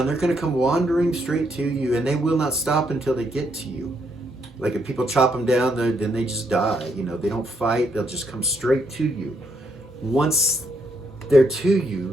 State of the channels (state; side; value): normal; both; correlation 0.75